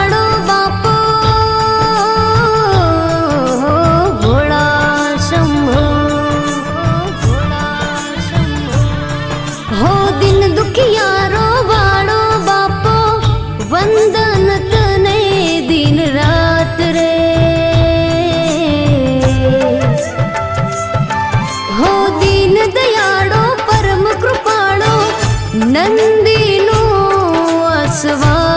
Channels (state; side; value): identical; both; correlation 1.00